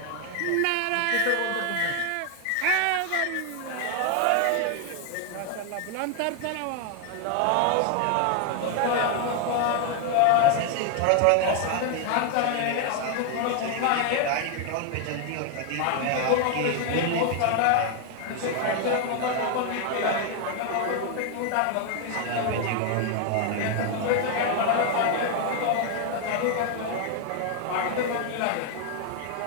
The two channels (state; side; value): different; both; correlation 0.01